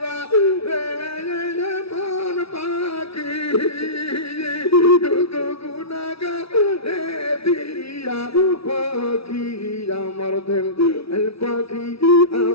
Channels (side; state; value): right; late; 0.76 ms